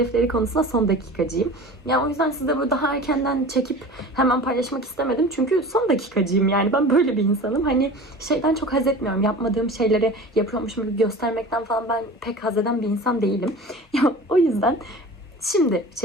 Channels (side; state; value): both; normal; correlation 0.38